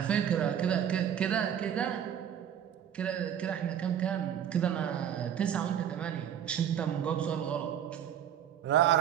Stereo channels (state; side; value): quieter; left; 9.4 dB